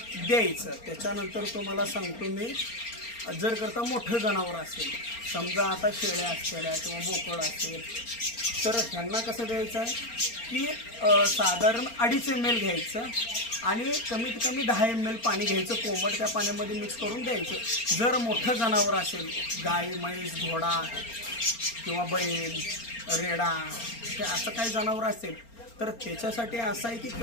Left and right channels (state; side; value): late; right; 4.3 ms